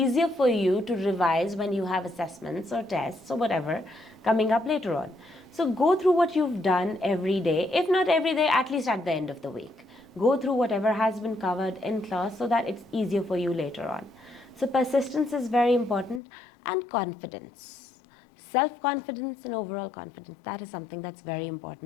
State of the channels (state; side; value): drops out; right; at 16.2 s